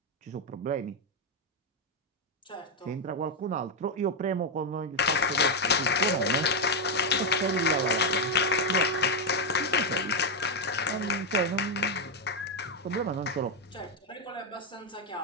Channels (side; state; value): both; normal; correlation 0.04